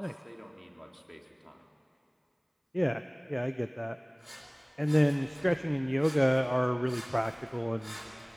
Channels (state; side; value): identical; both; correlation 1.00